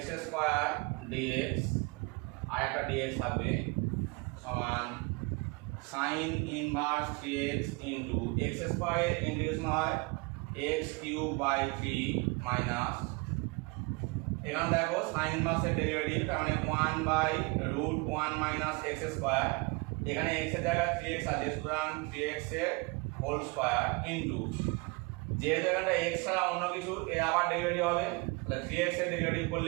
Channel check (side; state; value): left; quieter; 27.8 dB